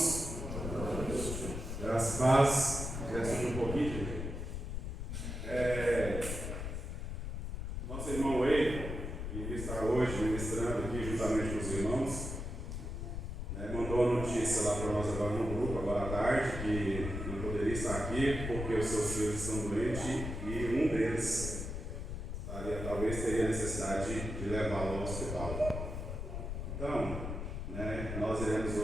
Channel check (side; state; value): left; noise; rumble, 5 dB below the sound